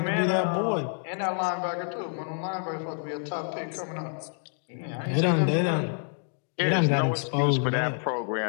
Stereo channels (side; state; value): right; silent; 56 dB below the other